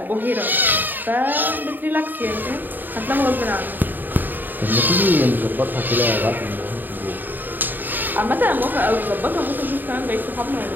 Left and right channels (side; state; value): left; late; 0.090 ms